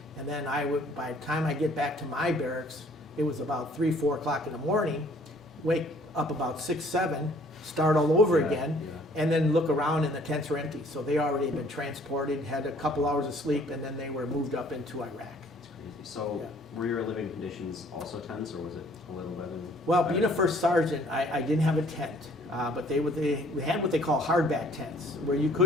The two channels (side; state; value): both; normal; correlation 0.58